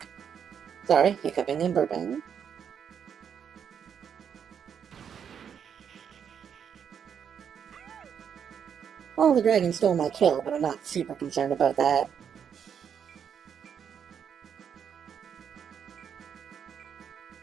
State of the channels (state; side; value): quieter; left; 7.9 dB